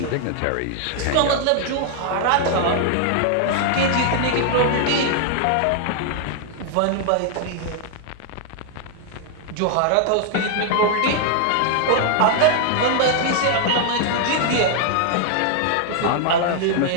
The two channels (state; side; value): different; both; correlation 0.00